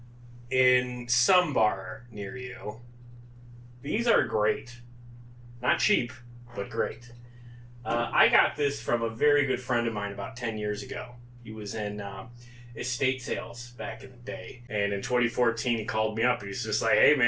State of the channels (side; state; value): both; identical; correlation 1.00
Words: in some bar near you. These are great. Not cheap, but great. I got this from a very good friend of mine about 10 years ago. He was in estate sales back in the day. And in 2014, he called me up. He was just like, hey,